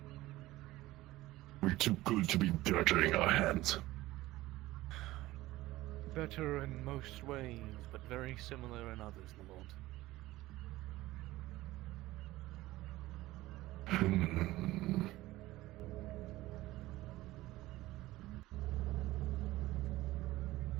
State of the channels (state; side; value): quieter; left; 17.4 dB